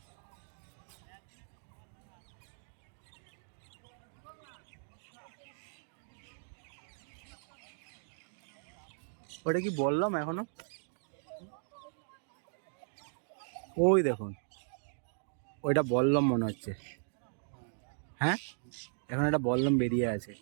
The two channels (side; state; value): left; silent; digital silence